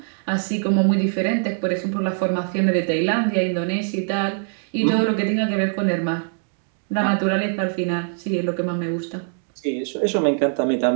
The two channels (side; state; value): left; silent; 59 dB below the other